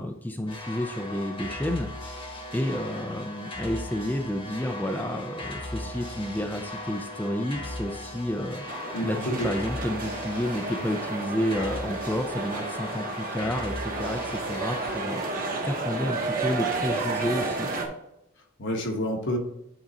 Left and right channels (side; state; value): both; normal; correlation 0.58